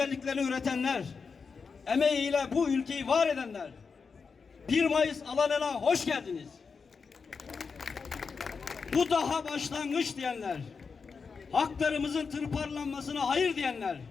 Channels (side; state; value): right; quieter; 5.3 dB